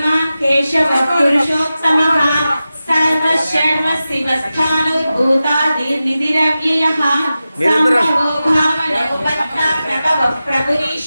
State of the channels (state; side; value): inverted; both; correlation -0.94